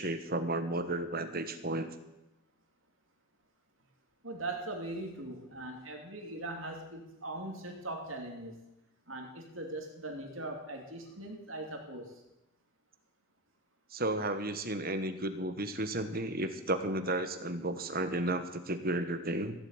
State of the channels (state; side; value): normal; both; correlation 0.17